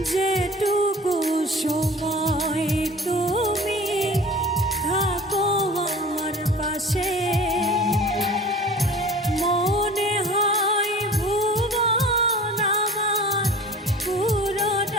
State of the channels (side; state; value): both; normal; correlation 0.42